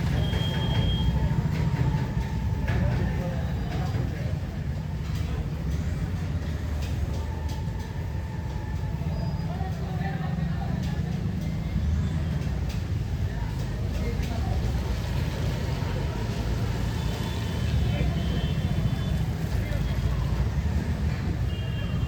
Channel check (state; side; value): identical; both; correlation 1.00